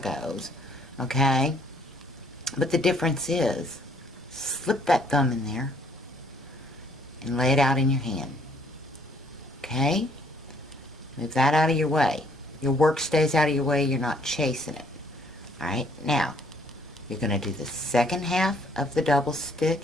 Okay? But the difference is, slip that thumb in there and lay it out in your hand. Okay? Move that out of your way. Your work stays out of your way. You're not chasing it. Alright? Now, you're going to do the second half of the double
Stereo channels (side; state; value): both; normal; correlation 0.63